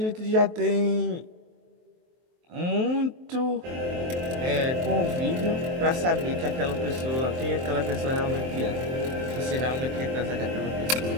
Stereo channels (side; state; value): left; late; 23 ms